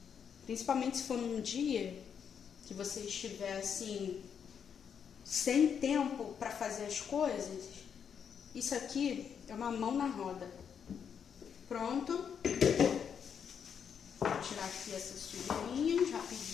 Principalmente se for num dia que você estiver assim, sem tempo para fazer as coisas. Isso aqui é uma mão na roda. Pronto. Vou tirar aqui essas sujeirinhas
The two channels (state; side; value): quieter; right; 7.5 dB